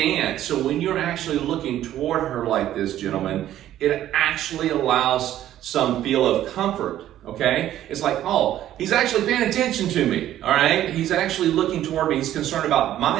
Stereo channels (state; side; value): quieter; left; 12.4 dB